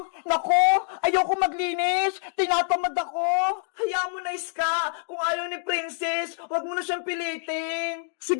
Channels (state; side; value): silent; right; digital silence